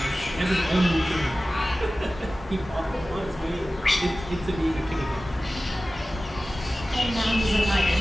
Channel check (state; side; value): normal; both; correlation 0.96